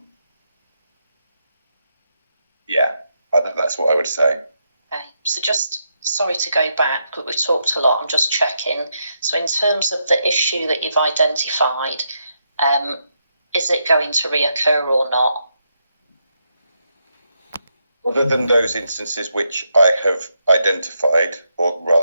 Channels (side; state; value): both; inverted; correlation -0.81